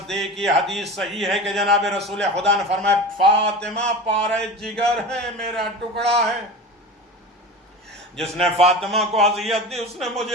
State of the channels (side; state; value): both; normal; correlation 0.31